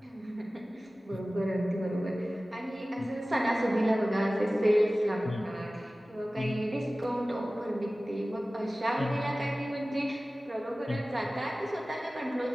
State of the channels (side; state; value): both; normal; correlation 0.97